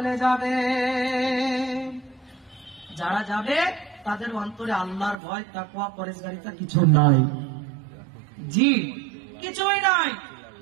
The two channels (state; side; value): drops out; left; at 5.2 s